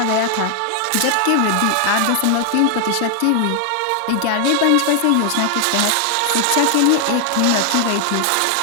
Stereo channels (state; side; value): different; both; correlation 0.00